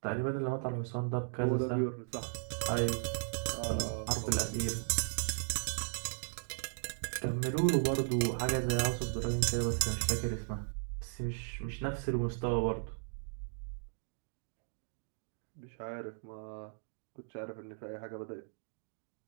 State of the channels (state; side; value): silent; left; digital silence